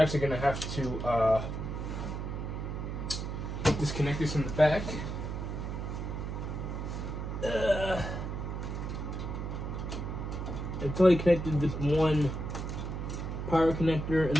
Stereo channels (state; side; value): noise; right; hum, 4 dB below the sound